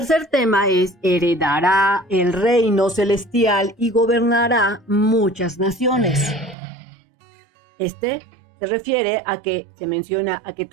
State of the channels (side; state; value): left; drops out; at 6.6 s